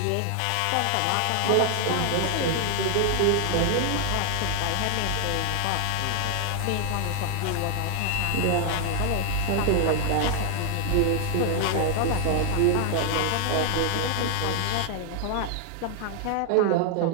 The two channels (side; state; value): both; different; correlation 0.00